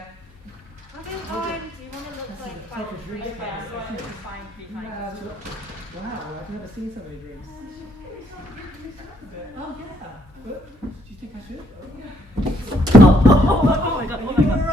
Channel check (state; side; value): normal; both; correlation 0.69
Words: I don't mind. Do you want to look like Take a drink. fine behind us? Wow, I've never seen so many drinks. Oh yeah. But, do you think I should? Oh my god. You're